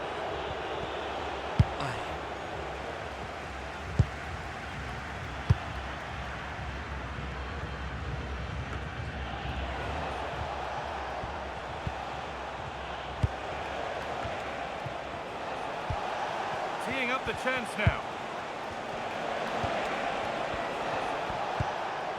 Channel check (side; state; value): both; identical; correlation 1.00